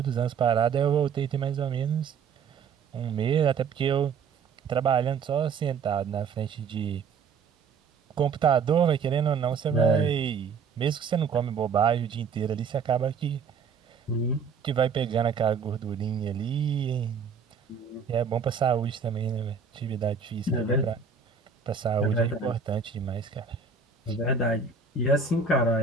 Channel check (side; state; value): left; quieter; 5.8 dB